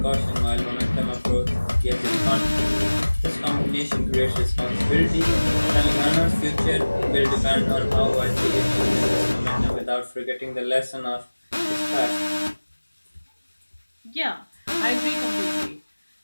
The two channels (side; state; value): both; inverted; correlation -1.00